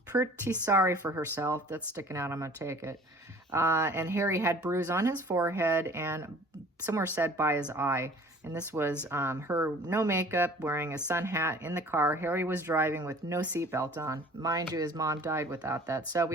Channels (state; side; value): normal; both; correlation 0.48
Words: sorry for herself. That's sticking out. I'm going to take it. And Harry had bruise on his forehead and somewhere said by his eye. And this was her no makeup, wearing a sun hat in the car. Harry was driving with no seatbelt on. Mind you, his mom died without that. So